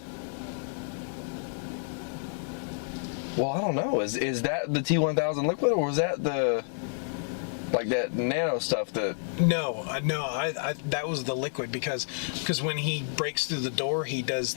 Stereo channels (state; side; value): silent; right; digital silence